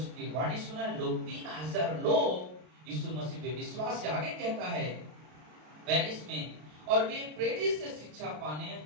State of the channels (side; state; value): left; late; 33 ms